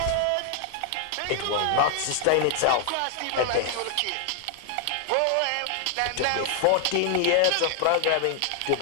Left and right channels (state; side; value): different; both; correlation 0.00